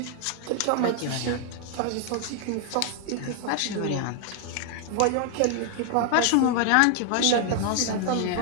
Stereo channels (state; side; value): different; both; correlation 0.00